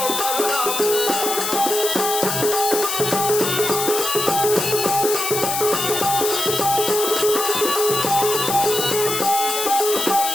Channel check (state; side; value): noise; left; hiss, 2 dB below the sound